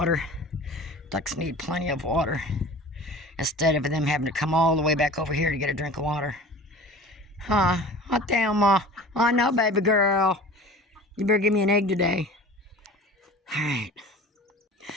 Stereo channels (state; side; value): normal; both; correlation 0.40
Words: Ducks need plenty of water instead of them having to come all the way back over here to get a drink of water. Huh? Hot damn, Ma. Oh, no, baby girl. You better give me an egg today. All right.